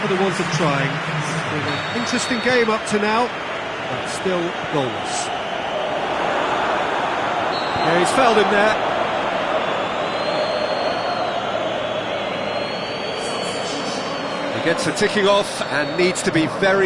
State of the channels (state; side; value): identical; both; correlation 1.00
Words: for the want of trying. It's been an interesting game up to now. but still goalless. Yeah, he's fouled him there. He gets a ticking off and needs to be